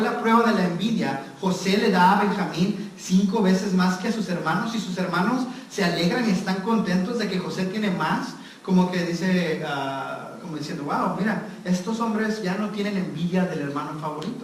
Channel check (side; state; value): both; identical; correlation 1.00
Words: la prueba de la envidia. José le da a Benjamín 5 veces más que a sus hermanos, y sus hermanos se alegran y están contentos de que José tiene más. Como que dice, como diciendo, wow, mira, estos hombres ya no tienen envidia del hermano